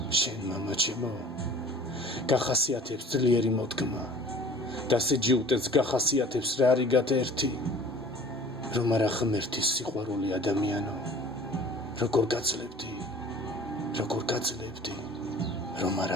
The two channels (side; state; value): both; normal; correlation 0.47